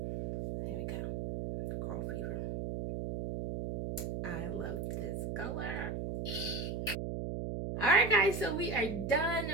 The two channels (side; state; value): right; noise; hum, 2 dB below the sound